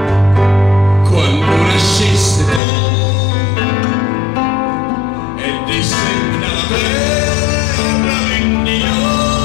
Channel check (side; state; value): right; drops out; at 2.6 s